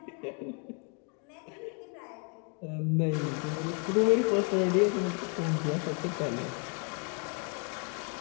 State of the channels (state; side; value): quieter; right; 37.5 dB